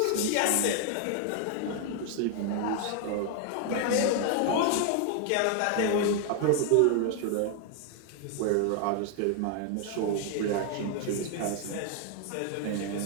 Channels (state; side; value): different; both; correlation 0.00